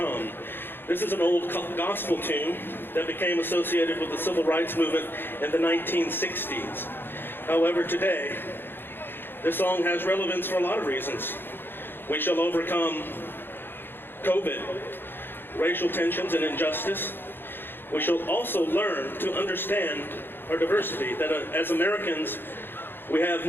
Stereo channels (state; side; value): late; right; 0.10 ms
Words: This is an old gospel tune that became associated with the civil rights movement in the 1960s. However, today, this song has relevance for a lot of reasons. We shall overcome COVID, racial tensions and injustice. We shall also learn to understand our diversity, that as Americans, we have